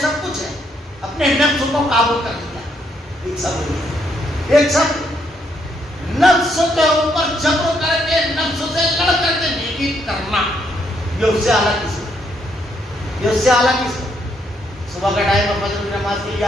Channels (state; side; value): normal; both; correlation 0.74